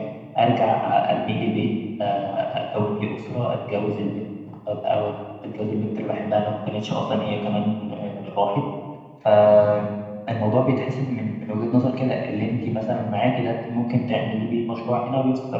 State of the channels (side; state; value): both; identical; correlation 1.00